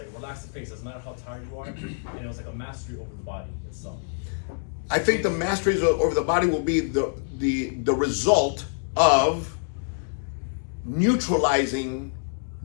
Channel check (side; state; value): right; silent; digital silence